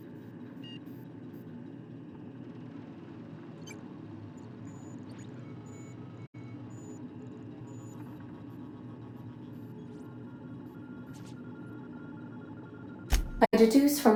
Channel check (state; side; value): identical; both; correlation 1.00